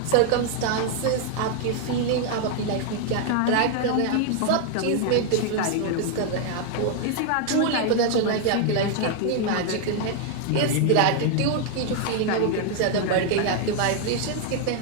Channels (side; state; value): both; different; correlation 0.00